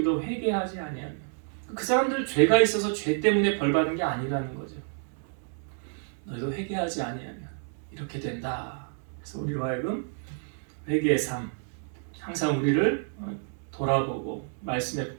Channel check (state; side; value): silent; left; 59 dB below the other